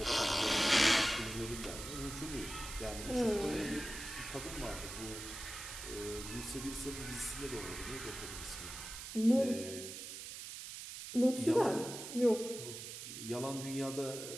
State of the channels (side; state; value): right; noise; hiss, 9 dB below the sound